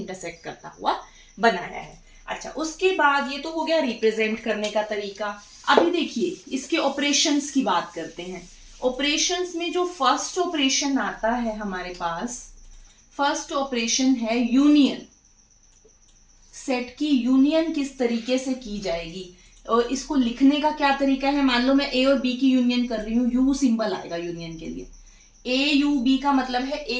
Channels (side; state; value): both; identical; correlation 1.00